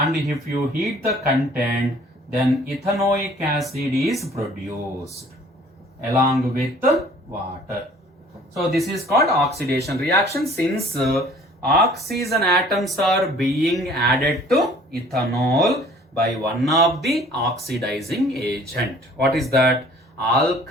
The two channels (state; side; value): normal; both; correlation 0.53